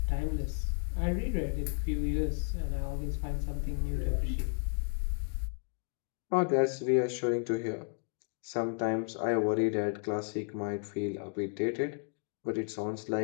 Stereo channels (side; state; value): right; silent; 56 dB below the other